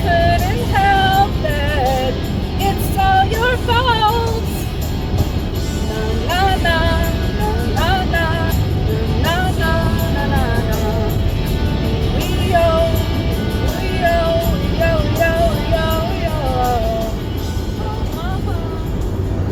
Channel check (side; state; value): both; identical; correlation 1.00